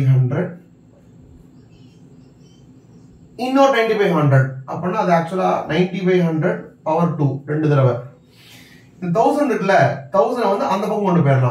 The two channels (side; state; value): both; identical; correlation 1.00